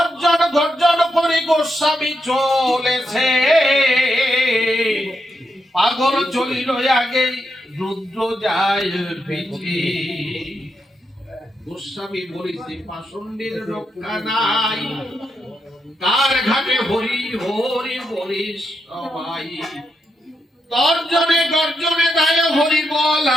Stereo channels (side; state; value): both; normal; correlation 0.83